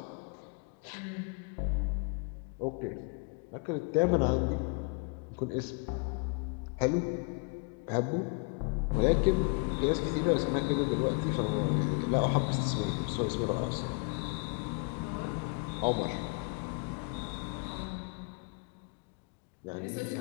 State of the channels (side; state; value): right; quieter; 34.2 dB